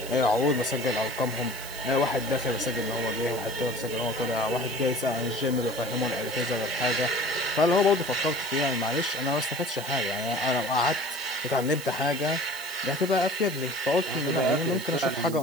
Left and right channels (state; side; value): noise; right; hiss, 12 dB below the sound